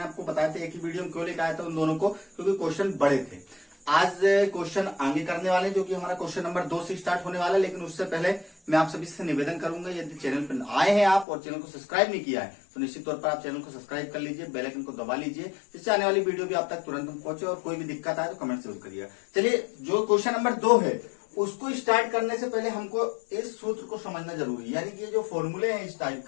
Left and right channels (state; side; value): drops out; right; at 11.2 s